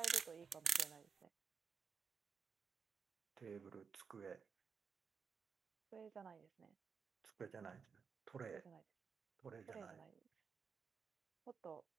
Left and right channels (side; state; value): left; quieter; 6.0 dB